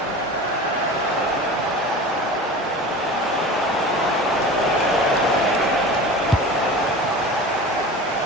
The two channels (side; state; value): both; normal; correlation 0.35